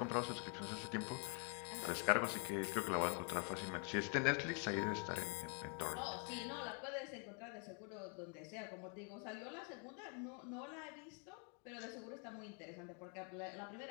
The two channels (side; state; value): right; quieter; 39.4 dB